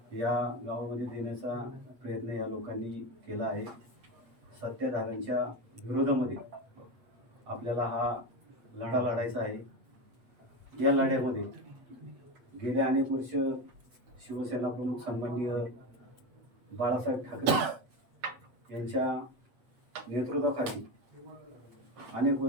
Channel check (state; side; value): late; left; 8.1 ms